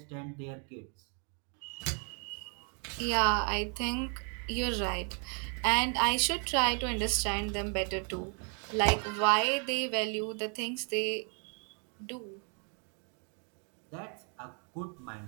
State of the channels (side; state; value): left; quieter; 40.0 dB